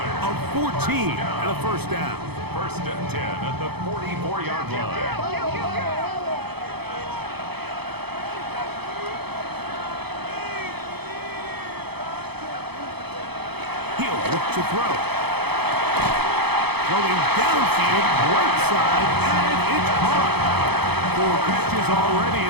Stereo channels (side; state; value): left; late; 0.98 ms